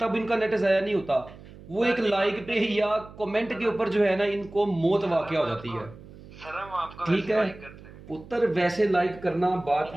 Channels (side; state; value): right; noise; hum, 18 dB below the sound